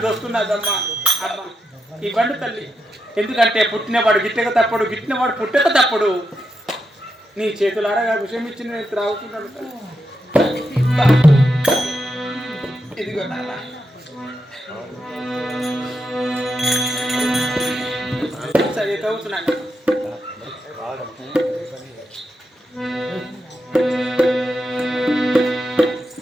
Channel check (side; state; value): both; normal; correlation 0.85